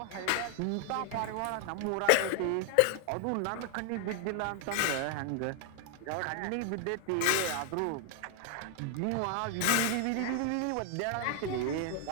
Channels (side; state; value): both; different; correlation 0.00